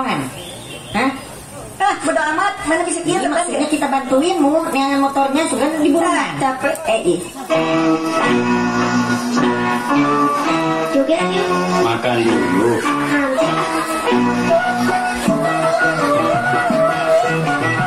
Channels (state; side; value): identical; both; correlation 1.00